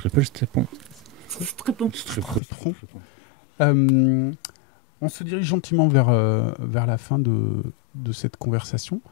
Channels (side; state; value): right; drops out; at 2.4 s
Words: stepons. Très bon. On se dirige gentiment vers la fin de cette conversation.